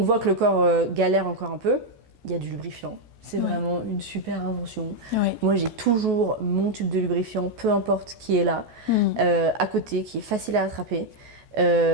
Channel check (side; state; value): left; late; 14 ms